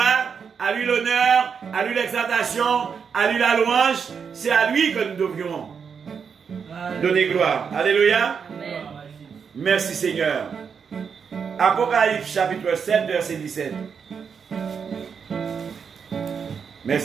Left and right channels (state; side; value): quieter; left; 6.4 dB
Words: à lui l'honneur, à lui l'exaltation, à lui la louange. C'est à lui que nous devrions donner gloire. Alléluia. Amen. Merci Seigneur. Apocalypse chapitre 7, verset 17.